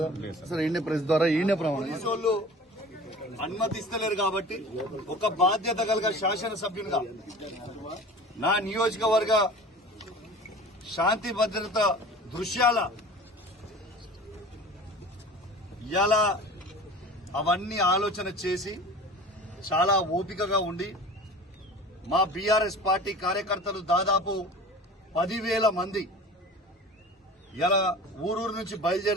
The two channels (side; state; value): both; normal; correlation 0.40